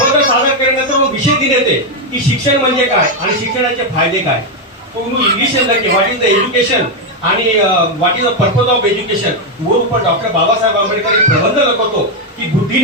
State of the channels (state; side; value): normal; both; correlation 0.04